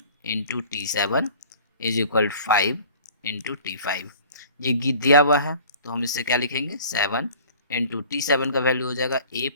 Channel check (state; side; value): inverted; both; correlation -0.47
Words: into T7 is equal to 5 into T5। ये दिया हुआ है तो हम इससे क्या लिखेंगे, 7 इंटू T7 का वैल्यू हो जाएगा A